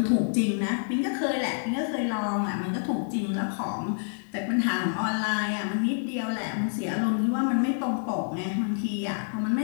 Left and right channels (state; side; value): silent; right; digital silence